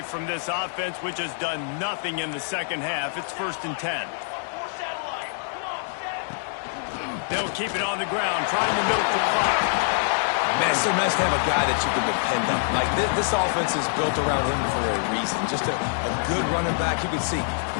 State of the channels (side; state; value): right; silent; digital silence